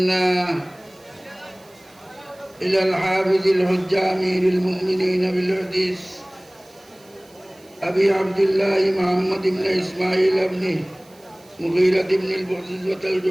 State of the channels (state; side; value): noise; right; hiss, 28 dB below the sound